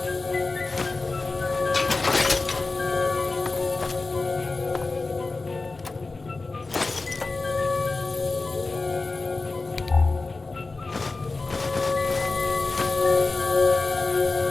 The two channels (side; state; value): right; quieter; 3.6 dB